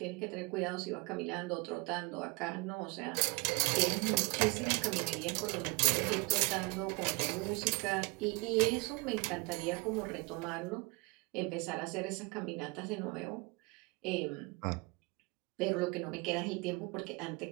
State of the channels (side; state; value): left; quieter; 27.8 dB